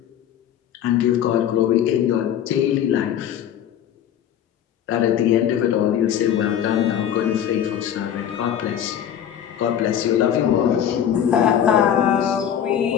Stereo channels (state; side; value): quieter; right; 9.7 dB